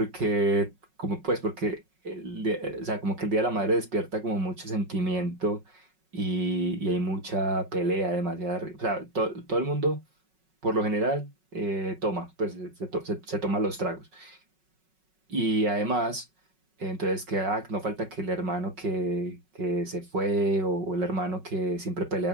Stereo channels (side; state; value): left; late; 5.4 ms